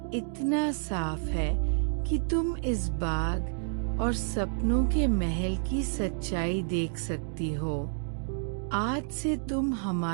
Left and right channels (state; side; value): silent; left; digital silence